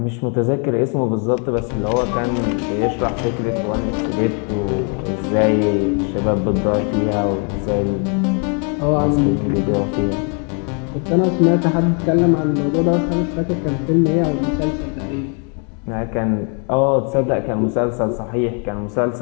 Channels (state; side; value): quieter; right; 39.2 dB